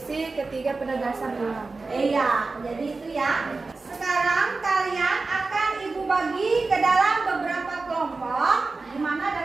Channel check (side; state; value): left; quieter; 3.8 dB